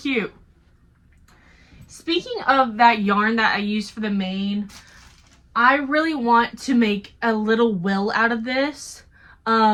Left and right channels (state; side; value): identical; both; correlation 1.00